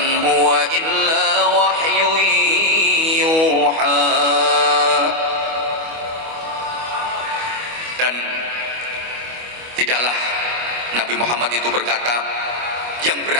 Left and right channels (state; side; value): late; left; 25 ms